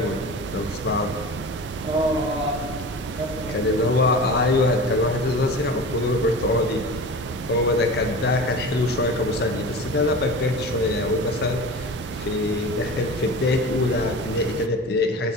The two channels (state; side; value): normal; both; correlation 0.34